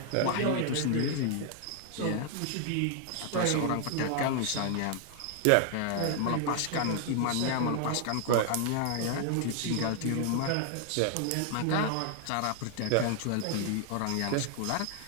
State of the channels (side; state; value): both; different; correlation 0.00